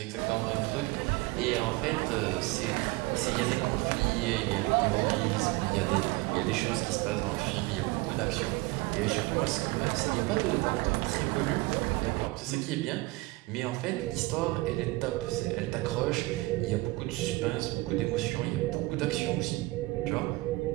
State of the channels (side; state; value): left; quieter; 22.1 dB